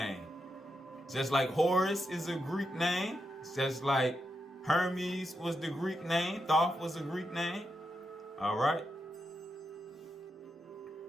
Just like Horus is a Greek name, just like Hermes was the Greek name, Thoth was a Greek name. Alright.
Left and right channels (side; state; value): both; normal; correlation 0.85